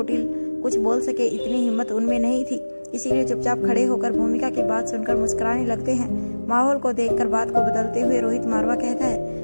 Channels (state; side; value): inverted; both; correlation -1.00